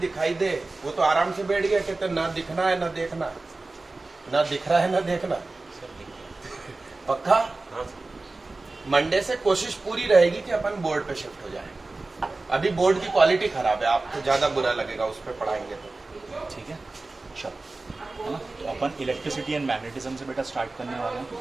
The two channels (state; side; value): quieter; left; 3.3 dB